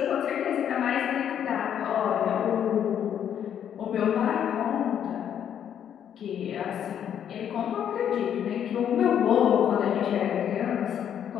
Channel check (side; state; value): right; quieter; 9.3 dB